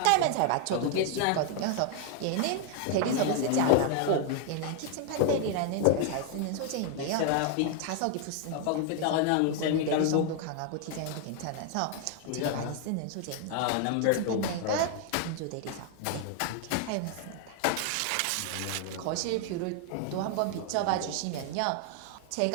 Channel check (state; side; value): different; both; correlation 0.00